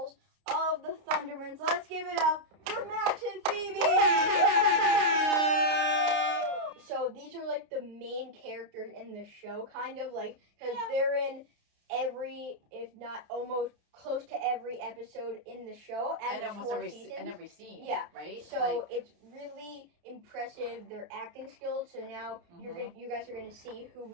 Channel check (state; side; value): late; left; 29 ms